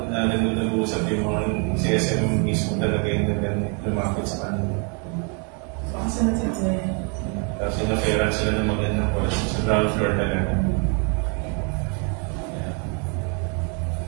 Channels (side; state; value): left; quieter; 36.7 dB